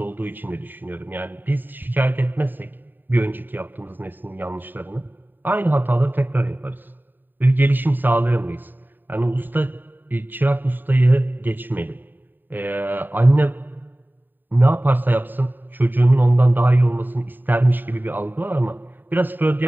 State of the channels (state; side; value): late; left; 0.091 ms